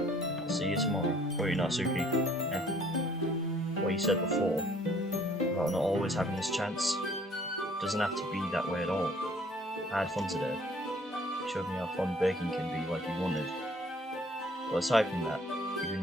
I'll see you tomorrow. Wait, Natsuki. What you said before, about not always having this chance, doesn't have to be that way at all. I had fun today. You showed me how fun baking can be like you wanted. But aside from that, you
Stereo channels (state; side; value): normal; both; correlation 0.58